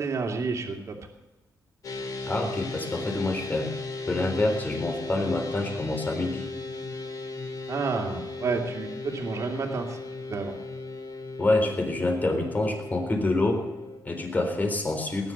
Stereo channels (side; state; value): both; normal; correlation 0.81